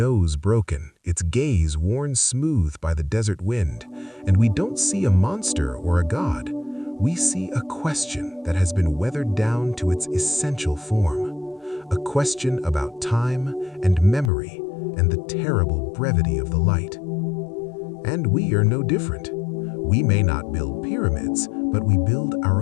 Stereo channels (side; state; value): right; drops out; at 14.3 s